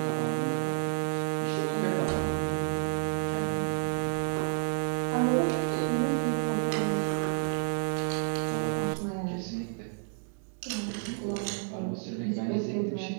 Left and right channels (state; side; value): silent; left; 58 dB below the other